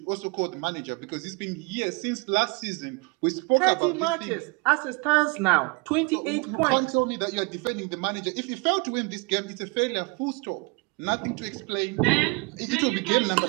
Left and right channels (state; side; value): quieter; left; 28.8 dB